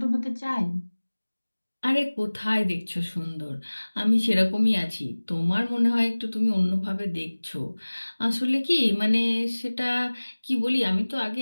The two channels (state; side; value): inverted; both; correlation -1.00